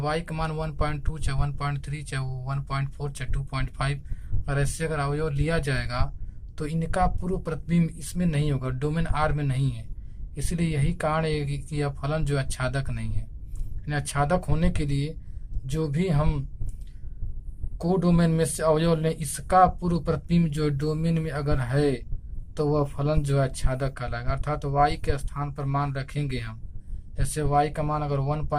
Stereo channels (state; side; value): identical; both; correlation 1.00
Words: का मान 1.2 चाहे 1.3 चाहे 1.4 चाहे 2.5 और ऐसे अगर अवयव लिया जाएगा तो इनका पूर्व प्रतिबिंब इसमें नहीं होगा, डोमेन आर में नहीं है। इसलिए यही कारण है कि यह फलन जो आच्छादक नहीं है। आच्छादक होने के लिए जो भी हम कोडोमेन में से अवयव लें, इसका पूर्व प्रतिबिंब जो डोमेन में अगर है तो वह फलन जो है आच्छादक कहलाएगा। अर्थात y के स्थान पर मान रखेंगे हम, जैसे y का मान अगर